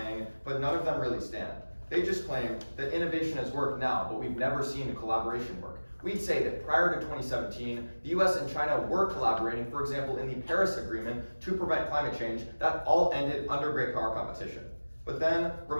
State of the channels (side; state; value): both; inverted; correlation -1.00